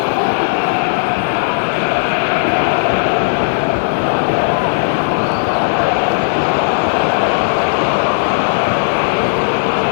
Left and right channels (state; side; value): silent; right; digital silence